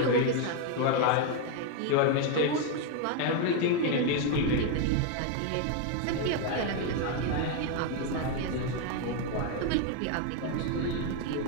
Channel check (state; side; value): different; both; correlation 0.01